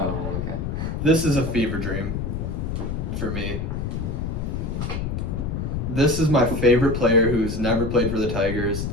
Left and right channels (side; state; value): left; noise; rumble, 2 dB below the sound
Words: okay. This is a fever dream for me. This is my favorite player who's never played for the Tigers